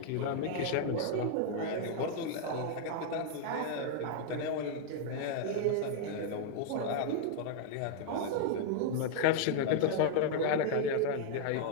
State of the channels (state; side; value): different; both; correlation -0.01